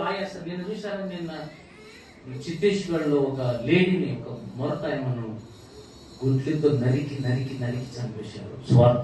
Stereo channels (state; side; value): identical; both; correlation 1.00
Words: ఆయాస. నేను చూశాను నిన్న ఛత్తీస్గఢ్ లో ఒక లేడీని, ఒక మొరటాయమను గుడ్లతో నరికి నరికి నరికి చంపేశారు. సువార్త